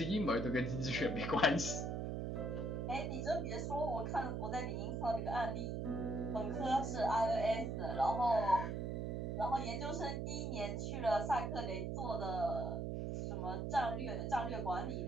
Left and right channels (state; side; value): noise; right; hum, 2 dB below the sound